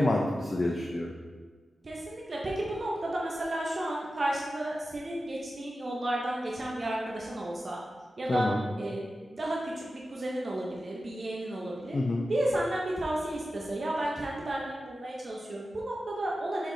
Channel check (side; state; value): both; normal; correlation 0.93